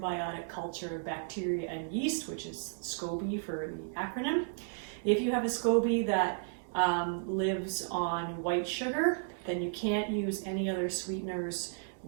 culture of bacteria and yeast, which is SCOBY for the acronym. If you have a SCOBY that lives on white sugar, then you can't use any other sweeteners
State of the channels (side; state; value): left; silent; digital silence